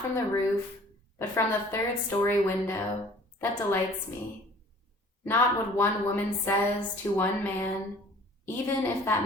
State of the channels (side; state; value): both; normal; correlation 0.51